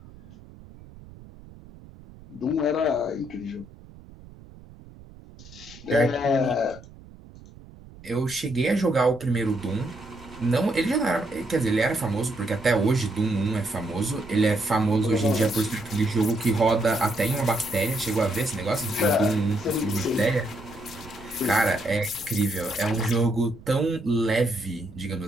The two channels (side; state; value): right; noise; rumble, 20 dB below the sound